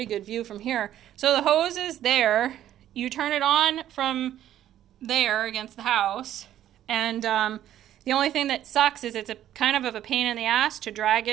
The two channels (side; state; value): left; quieter; 11.8 dB